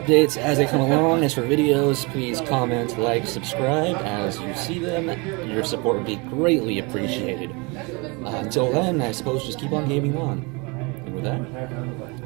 as they come along. As for videos, please comment, like, subscribe as you see them. Your support would be greatly appreciated. Until then, I suppose just keep on gaming on. And with that,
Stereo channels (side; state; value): left; quieter; 28.8 dB